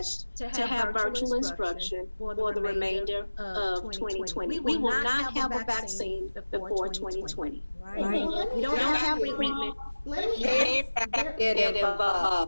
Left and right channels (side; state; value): both; inverted; correlation -1.00